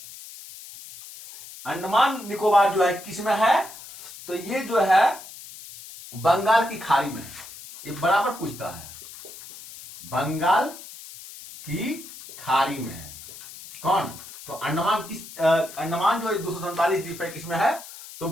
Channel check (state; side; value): noise; left; hiss, 15 dB below the sound